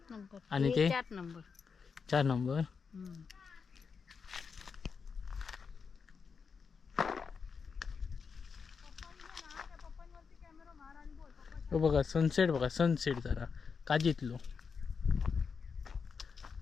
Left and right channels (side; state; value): right; quieter; 5.7 dB